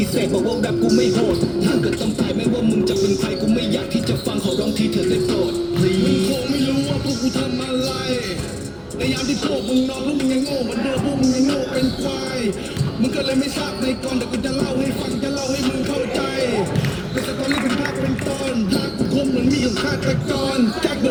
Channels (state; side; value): identical; both; correlation 1.00